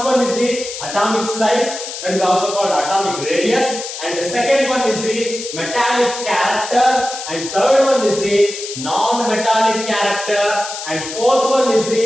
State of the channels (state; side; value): noise; left; hiss, 9 dB below the sound